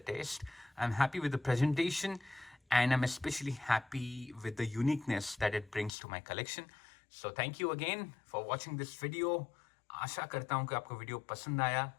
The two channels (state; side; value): drops out; right; at 5.9 s